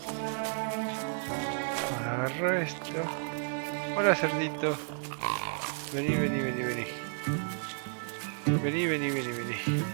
Ahora agarro esto. Hola cerdito. Vení, vení, vení, vení. Vení, vení, vení, vení.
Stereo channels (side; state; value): left; silent; 56 dB below the other